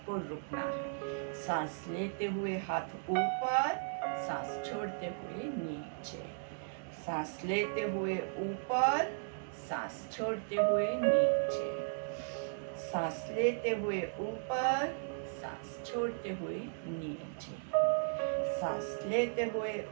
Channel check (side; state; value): left; silent; digital silence